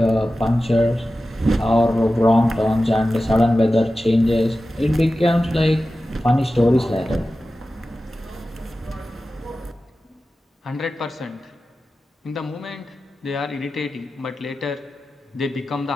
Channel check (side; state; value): both; normal; correlation 0.94